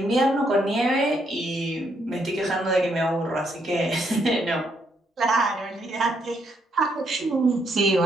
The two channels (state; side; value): normal; both; correlation 0.74